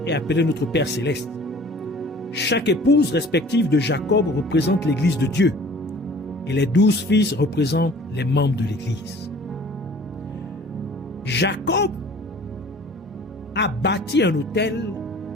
est appelé notre Père céleste. Chaque épouse respective de Jacob représente l'Église de Dieu, et les 12 fils représentent les membres de l'Église. Jacob a bâti un autel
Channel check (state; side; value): normal; both; correlation 0.49